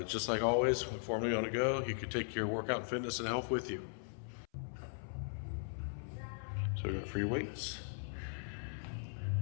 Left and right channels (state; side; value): silent; right; 52 dB below the other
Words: Just like always, when Formerly on the go, you can take your workout and fitness and health with you. So we got free weights.